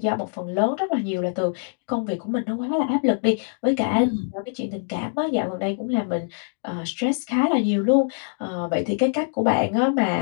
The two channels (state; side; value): silent; right; digital silence